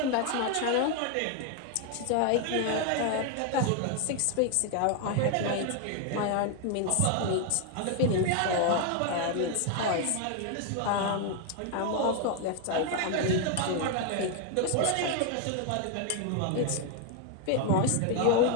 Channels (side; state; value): both; different; correlation 0.01